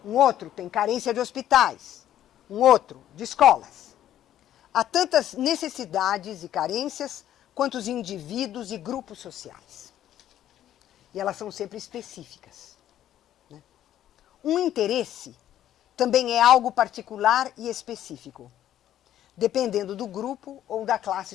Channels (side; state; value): right; quieter; 11.8 dB